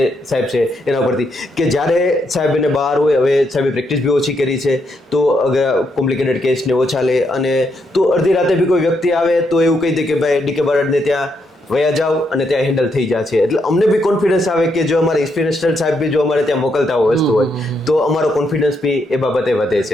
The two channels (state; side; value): normal; both; correlation 0.78